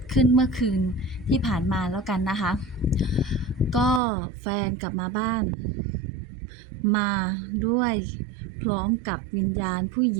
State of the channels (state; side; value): drops out; left; at 4.0 s